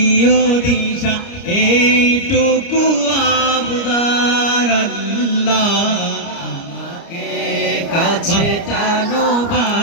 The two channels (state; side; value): late; right; 29 ms